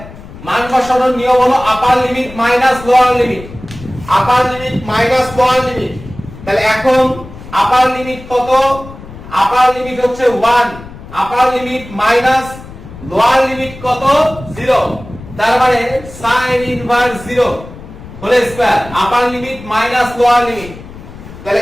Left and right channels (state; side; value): noise; left; rumble, 16 dB below the sound